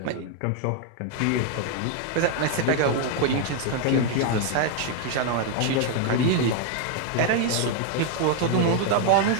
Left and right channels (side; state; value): both; different; correlation 0.00